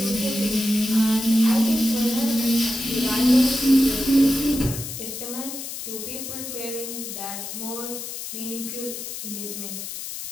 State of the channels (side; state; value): left; noise; hiss, 8 dB below the sound